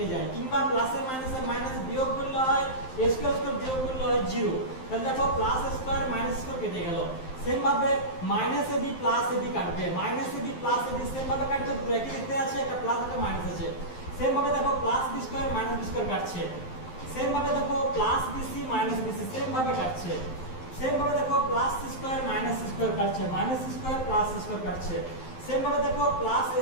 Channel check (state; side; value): late; right; 12 ms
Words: যায়, কিংবা প্লাসে মাইনাসে মাইনাস বিয়োগ করলে হয় স্কয়ার স্কয়ার বিয়োগ করলে হয় 0। তাহলে দেখো প্লাস স্কয়ার মাইনাস স্কয়ার কেটে গেল। সেম ভাবে মাইনাস ab প্লাস ab কাটবে, minus ab plus ab same ভাবে কাটবে, দুটো একই দেখতে আছে, একটা প্লাস একটা মাইনাস আছে। সেম ভাবে দেখো plus b square minus b square কাটছে। সেম ভাবে দেখো plus bc minus bc same ভাবে কাটছে। সেম ভাবে দেখো plus c square minus c square কাটছে, minus c square plus c square কাটছে। সেম ভাবে দেখো প্লাস